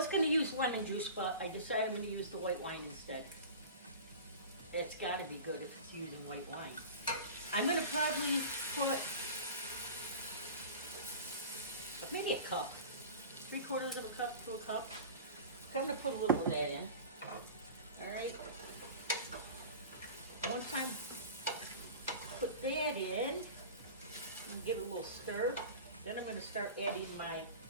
going to use lemon juice, but I decided I'm going to use the white wine instead. It's got to be good if it's using white wine. I'm going to probably put maybe a cup. 3/4 of a cup to a cup. I'm going to put a little of that in. Alright. Once I put that in, and give it a little stir, then I'm going to start adding my,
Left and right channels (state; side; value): inverted; both; correlation -0.35